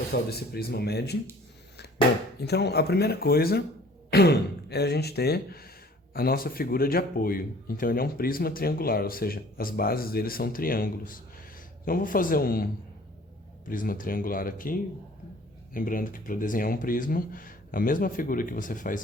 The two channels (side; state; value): both; normal; correlation 0.52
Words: desse prisma mede. Bom, então a primeira coisa é a gente ter a nossa figura de apoio. Então ele é um prisma triangular, ou seja, as bases dele são triângulos. Então eu vou fazer um prisma triangular aqui, lembrando que para desenhar um prisma, a mesma figura que você